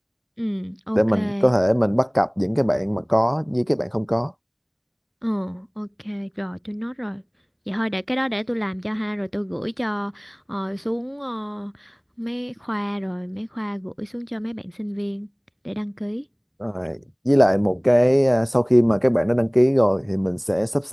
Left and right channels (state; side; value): identical; both; correlation 1.00